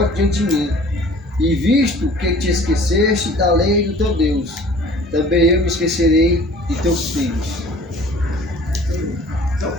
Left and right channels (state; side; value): normal; both; correlation 0.49